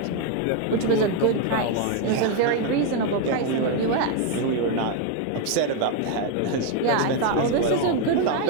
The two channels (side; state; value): both; different; correlation 0.01